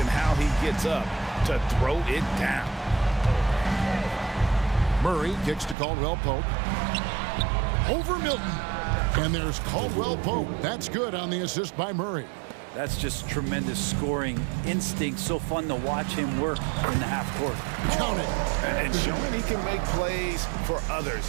how he gets up to throw it down. Murray kicks to Caldwell Pope. Over Milton. And there's Caldwell Pope. That's good on the assist by Murray. That's just tremendous scoring instinct. So fun to watch him work in the half court. Count it. And showing he can make plays for others.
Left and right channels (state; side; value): drops out; left; at 5.8 s